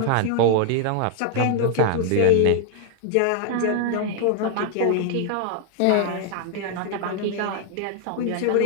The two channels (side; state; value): both; different; correlation 0.00